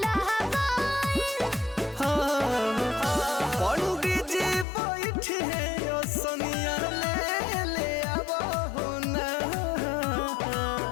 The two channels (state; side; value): drops out; right; at 4.7 s